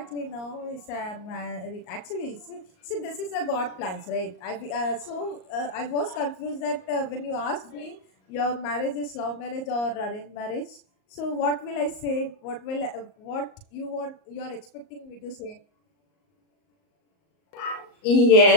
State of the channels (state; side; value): late; right; 38 ms